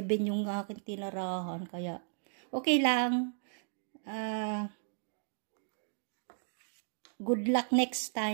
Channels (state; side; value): silent; left; digital silence